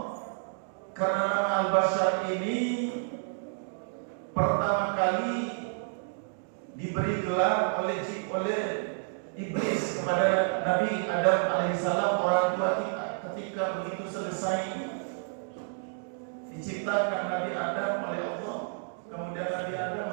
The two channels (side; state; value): left; silent; digital silence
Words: karena nama Al-Bashar ini pertama kali diberi gelar oleh iblis kepada Nabi Adam alaihissalam, orang tua kita, ketika begitu selesai diciptakan Nabi Adam oleh Allah, kemudian Nabi Adam